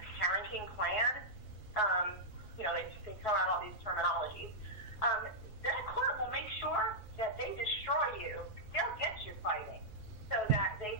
parenting plan, they throw out all these terminologies, that court will make sure that they destroy you. They'll get you fighting so that they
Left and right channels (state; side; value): late; right; 3.8 ms